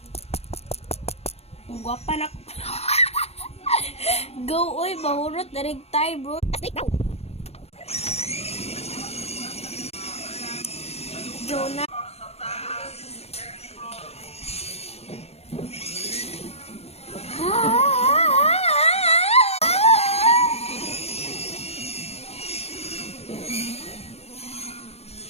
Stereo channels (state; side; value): late; right; 0.30 ms